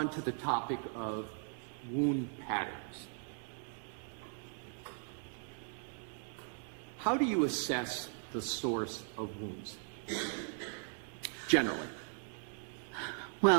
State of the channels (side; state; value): left; silent; 52 dB below the other